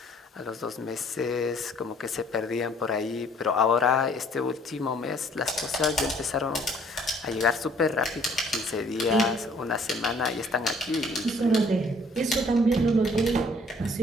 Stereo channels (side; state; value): both; normal; correlation 0.59